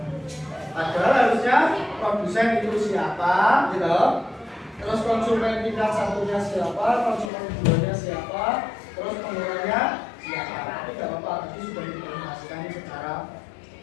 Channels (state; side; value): drops out; right; at 7.3 s